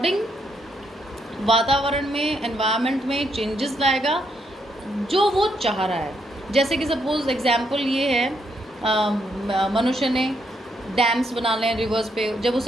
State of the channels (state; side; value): normal; both; correlation 0.76